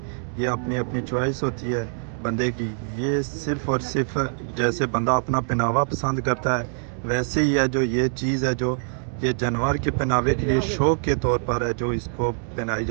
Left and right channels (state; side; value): silent; left; 58 dB below the other